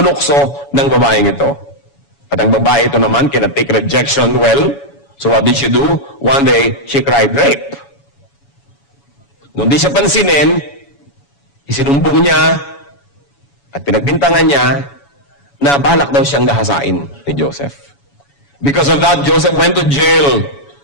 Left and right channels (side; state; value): right; late; 7.1 ms